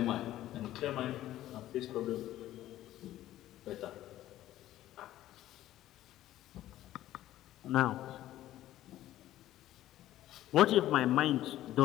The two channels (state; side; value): quieter; right; 13.9 dB